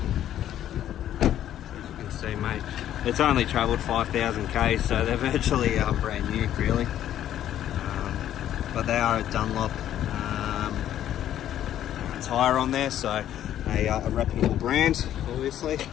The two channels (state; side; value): quieter; right; 11.4 dB